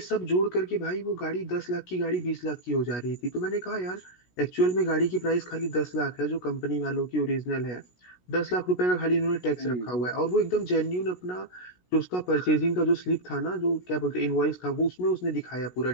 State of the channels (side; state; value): right; late; 16 ms